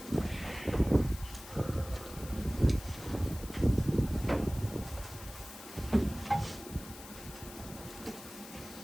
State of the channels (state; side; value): noise; left; hiss, 15 dB below the sound